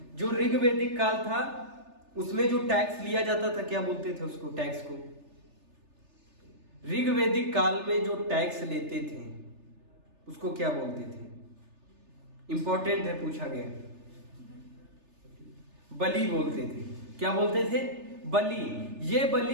जो ऋग्वैदिक काल था उसमें जो टैक्स लिया जाता था, क्या बोलते थे उसको? टैक्स को। ऋग्वैदिक काल में जो टैक्स लेते थे उसको क्या बोलते थे? इंपॉर्टेंट है, पूछा गया। बलि बोलते थे। क्या बोलते थे? बलि। ये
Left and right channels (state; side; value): late; left; 3.3 ms